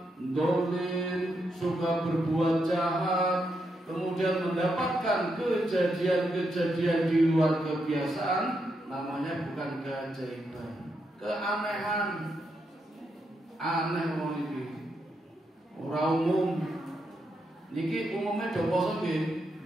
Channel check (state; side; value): normal; both; correlation 0.82